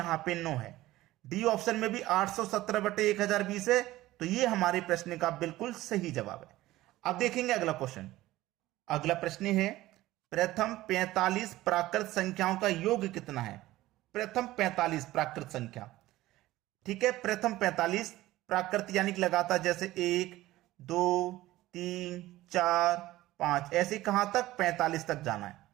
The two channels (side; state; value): left; quieter; 16.6 dB